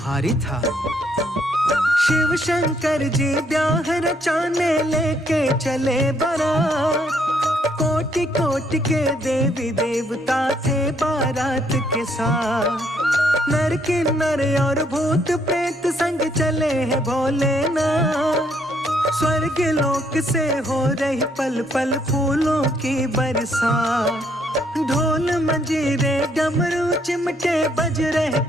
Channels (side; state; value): both; normal; correlation 0.70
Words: था। शिव शंकर जी ब्याह रचाने लेके चले बारात। कोटि कोटि के देवी देवता थे बारात के साथ। नर किन्नर और भूत प्रेत संग चले हैं भोलेनाथ। स्वर्ग लोक से हो रही पल पल फूलों की बरसात। ढोल मंजीरे डमरू चिमटे बज रहे